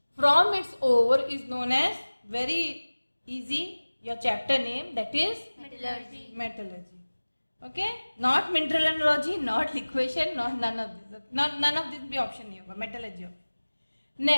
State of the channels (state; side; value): inverted; both; correlation -1.00